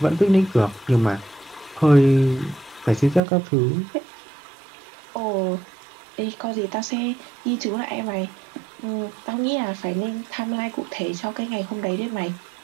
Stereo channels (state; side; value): drops out; left; at 3.2 s